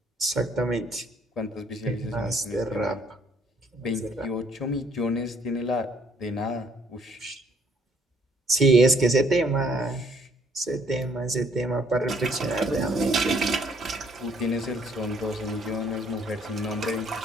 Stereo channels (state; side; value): normal; both; correlation 0.65